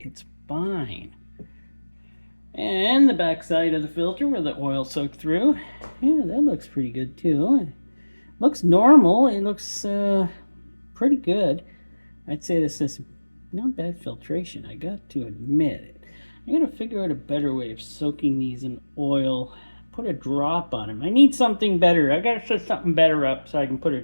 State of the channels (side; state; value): both; inverted; correlation -1.00